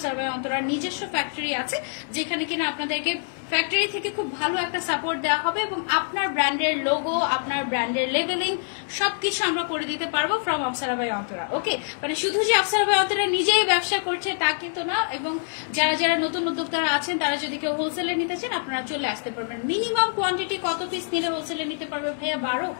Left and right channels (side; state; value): right; silent; digital silence